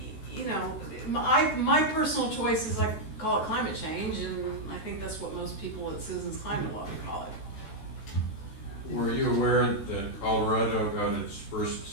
you know, my personal choice is I call it climate change, and I think that's what most people at Citizens Climate Lobby call it. Were you aware that Colorado got its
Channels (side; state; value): right; late; 14 ms